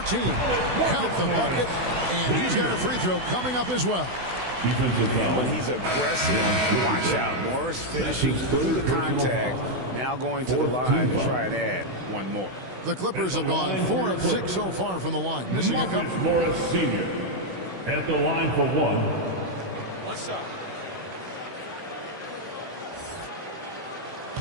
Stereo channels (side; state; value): left; late; 16 ms